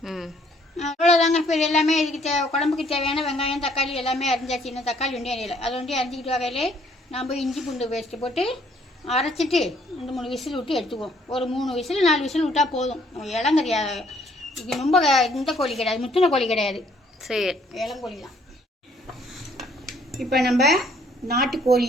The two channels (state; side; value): normal; both; correlation 0.64